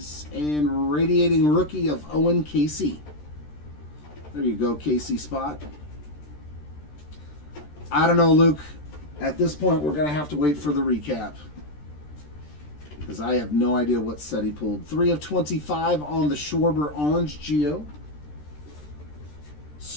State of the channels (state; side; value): late; right; 13 ms